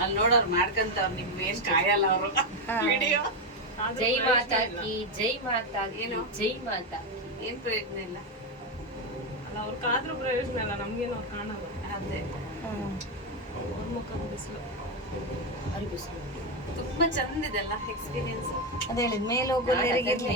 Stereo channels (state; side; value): normal; both; correlation 0.08